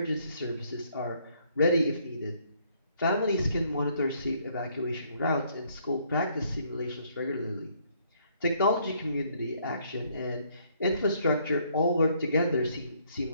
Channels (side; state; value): both; inverted; correlation -0.67